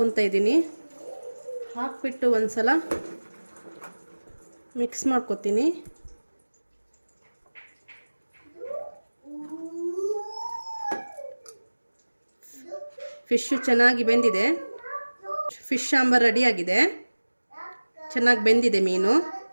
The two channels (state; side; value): inverted; both; correlation -1.00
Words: ಇದ್ದೀನಿ. ಹಾಕ್ಬಿಟ್ಟು ಒಂದು ಸಲ ಮಿಕ್ಸ್ ಮಾಡ್ಕೊತೀನಿ. ಫಿಶ್ಶು ಚೆನ್ನಾಗಿ ಬೆಂದಿದೆ. ಫಿಶ್ ಸಾಂಬಾರು ರೆಡಿಯಾಗಿದೆ. ಚೆನ್ನಾಗಿ ಬೆಂದಿದೆ ಮೀನು